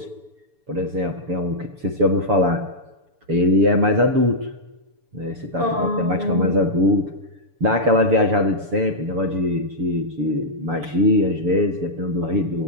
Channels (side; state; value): left; late; 6.9 ms